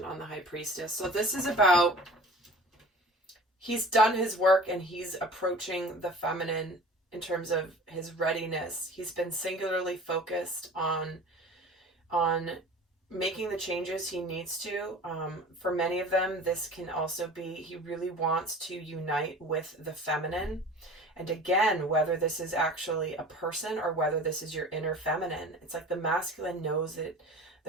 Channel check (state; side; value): normal; both; correlation 0.41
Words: on the High Priestess. So this is about, he's done his work and he's approaching the feminine in terms of his readiness. He's been singularly focused on making the changes he needs to. For many of them, this can also be, he really wants to unite with the feminine. And again, whether this is actually a person or whether this is your inner feminine, it's like the masculine knows that